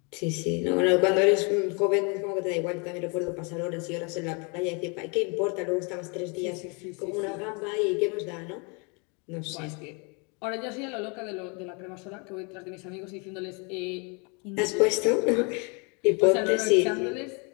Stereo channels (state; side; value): quieter; right; 33.1 dB